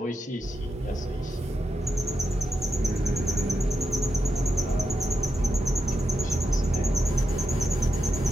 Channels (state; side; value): normal; both; correlation 0.87